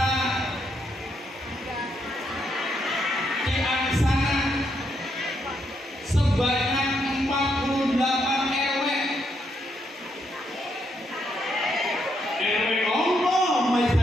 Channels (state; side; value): normal; both; correlation 0.77